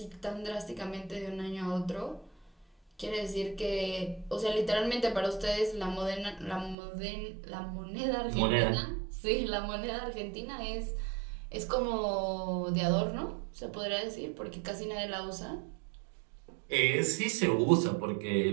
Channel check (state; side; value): drops out; left; at 6.8 s